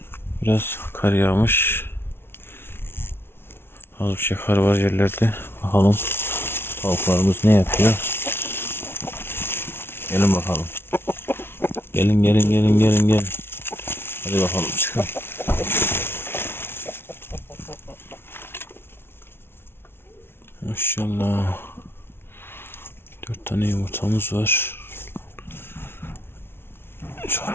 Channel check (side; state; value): right; late; 0.11 ms